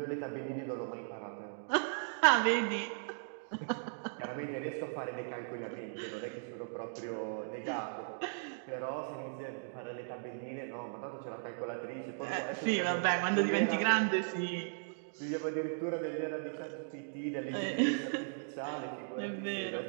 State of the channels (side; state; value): left; silent; digital silence